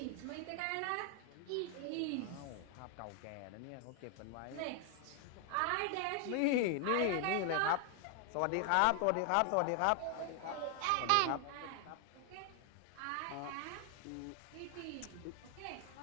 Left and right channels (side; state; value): both; different; correlation 0.00